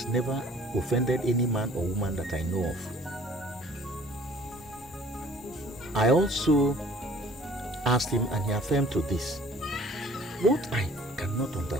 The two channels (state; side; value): normal; both; correlation 0.53